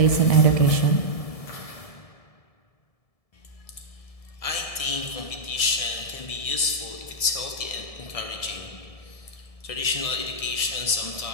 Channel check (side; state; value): right; late; 1.7 ms